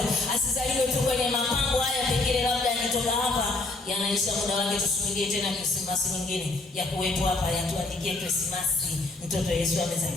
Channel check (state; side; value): quieter; right; 3.1 dB